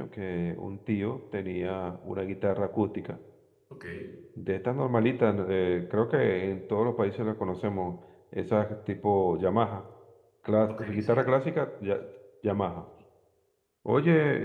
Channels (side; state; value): both; identical; correlation 1.00